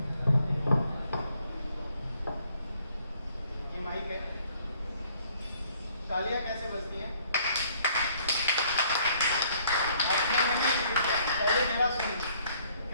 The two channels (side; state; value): both; inverted; correlation -0.63